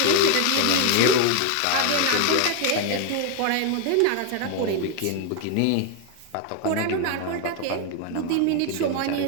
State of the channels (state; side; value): different; both; correlation 0.01